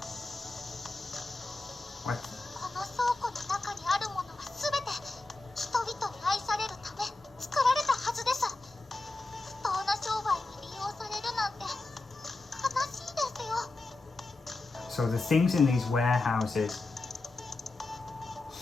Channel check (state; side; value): quieter; right; 3.2 dB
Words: What? この倉庫の中にあるものはすべて人々に愛されるため作られたはずです。不当な商売に利用されるなんて悲しいですよ。 So the things in these warehouses,